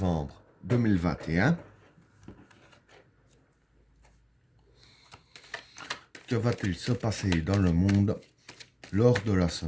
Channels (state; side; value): identical; both; correlation 1.00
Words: 2021. Que va-t-il se passer dans le monde lors de la